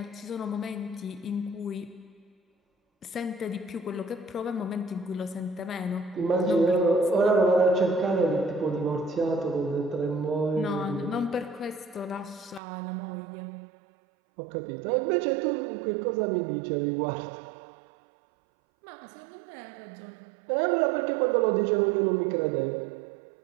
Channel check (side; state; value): left; drops out; at 12.6 s